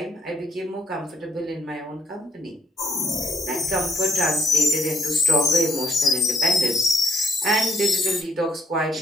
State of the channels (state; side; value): normal; both; correlation 0.70